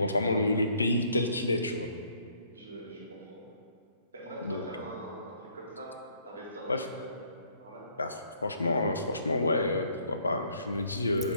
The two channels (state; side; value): inverted; both; correlation -0.64